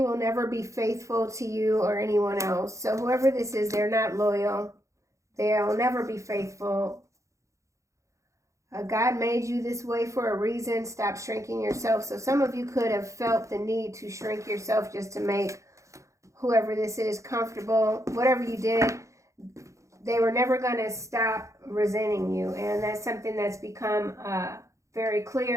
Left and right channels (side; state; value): left; late; 0.15 ms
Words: will never be faithful to you or anyone else. So whoever this is, they're not loyal. They'll never be faithful. God made you this way for a reason. Stop shrinking yourself. So some of you could have felt the need to shrink yourself just to make whoever this is comfortable. Whatever you did, they were never going to stop resenting you. And that's something that's become very